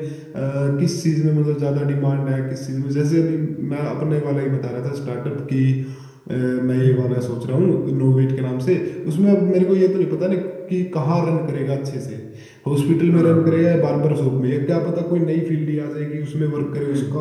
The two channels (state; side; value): identical; both; correlation 1.00